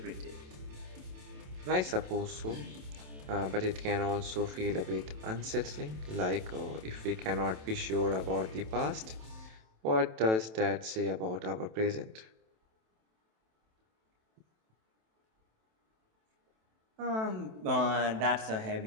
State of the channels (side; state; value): left; late; 27 ms